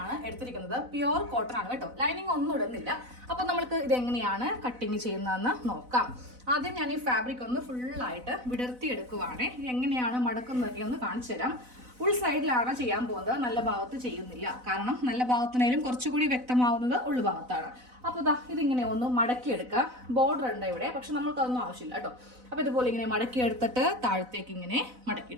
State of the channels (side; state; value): left; late; 4.0 ms